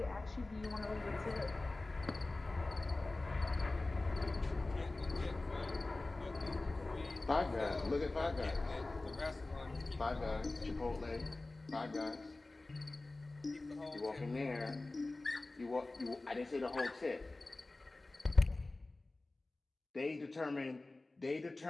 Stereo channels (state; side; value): quieter; right; 3.0 dB